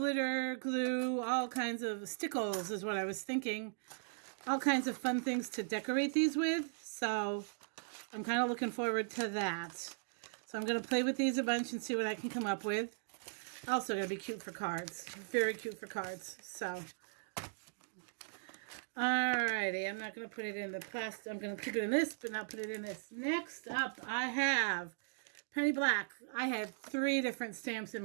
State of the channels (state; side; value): silent; left; digital silence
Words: glue, all kinds of stickles is what I was thinking. All kinds of fun things to decorate these with. So I'm kind of looking forward to that. So I'm going to play with these a bunch and see what I can come up with. Also going to be cute for cards. Very cute for cards. So, alrighty. I'm not going to put it in the plastic. I'm going to keep it in this, but not put it in this. Next up, I have Penny Black. I had 3 different stamps in